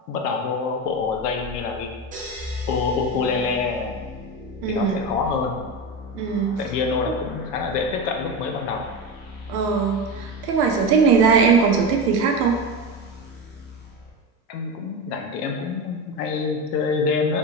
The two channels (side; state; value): both; normal; correlation 0.20